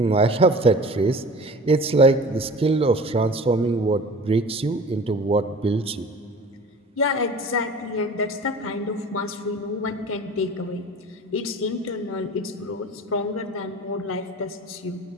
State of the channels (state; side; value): normal; both; correlation 0.41